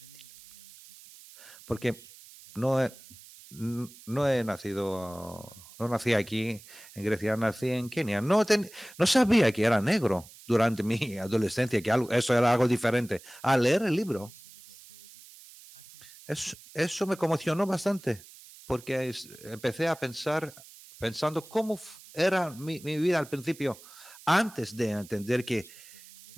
porque no nací aquí en Grecia, nací en Kenia. No sabía que era negro durante mi adolescencia, que eso era algo diferente. Al leer el libro, eso me conmocionó bastante, porque empecé a pensando cómo era mi vida al principio, antes de entender que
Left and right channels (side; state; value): right; noise; hiss, 20 dB below the sound